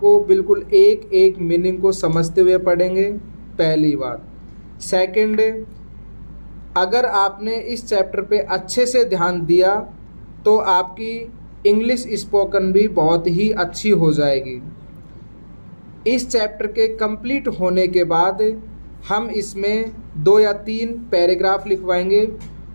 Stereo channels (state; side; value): inverted; both; correlation -1.00